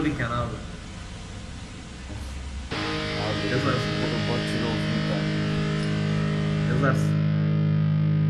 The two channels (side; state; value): both; identical; correlation 1.00